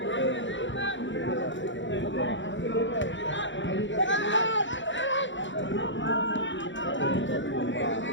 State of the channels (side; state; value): right; late; 0.54 ms